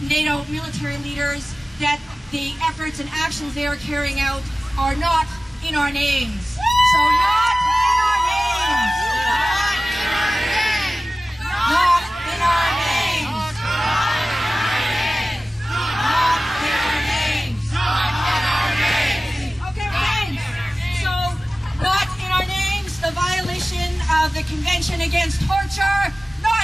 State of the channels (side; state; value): both; normal; correlation 0.97